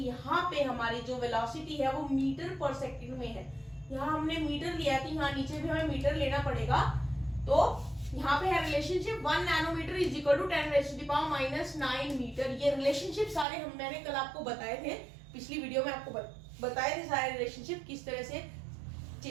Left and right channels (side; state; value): left; drops out; at 13.5 s